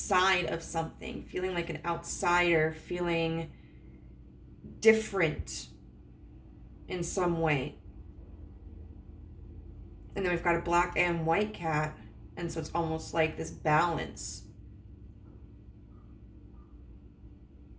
of something, feeling like an outsider, feeling different in some way. And then we've got a black and white cat. And so it's almost like this balance.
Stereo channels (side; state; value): both; identical; correlation 1.00